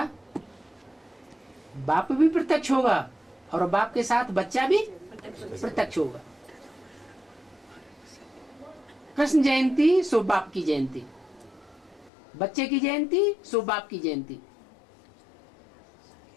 बाप भी प्रत्यक्ष होगा और बाप के साथ बच्चा भी प्रत्यक्ष होगा। कृष्ण जयंती सो बाप की जयंती, बच्चे की जयंती सो बाप की जयंती।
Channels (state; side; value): drops out; right; at 12.1 s